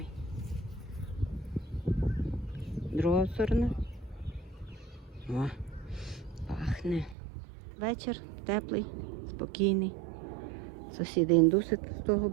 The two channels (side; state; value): left; drops out; at 7.2 s